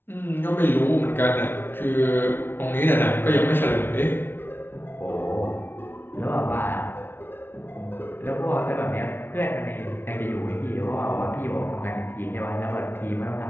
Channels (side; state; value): right; late; 0.11 ms